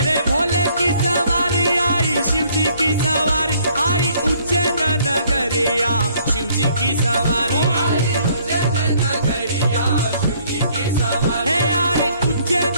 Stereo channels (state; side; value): inverted; both; correlation -0.62